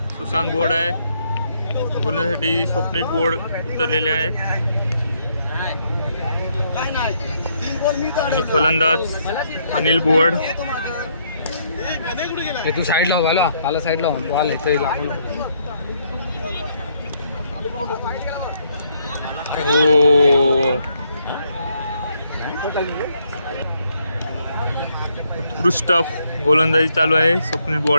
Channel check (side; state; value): both; inverted; correlation -0.72